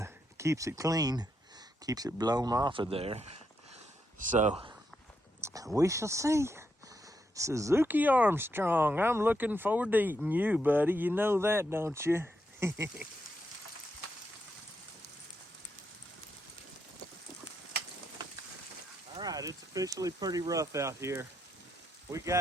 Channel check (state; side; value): normal; both; correlation 0.81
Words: keeps it clean, keeps it blown off of there. So we shall see. Suzuki Armstrong, I'm looking forward to eating you, buddy. You know that, don't you? All right, it's officially pretty rough out here. We